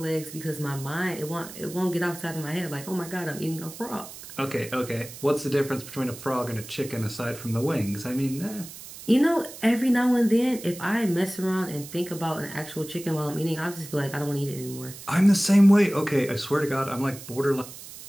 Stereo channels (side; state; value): right; noise; hiss, 14 dB below the sound